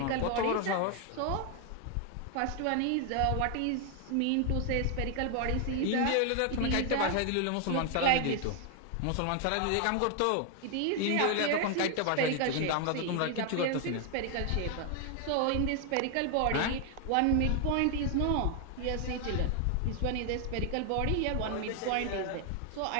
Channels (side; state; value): both; different; correlation 0.00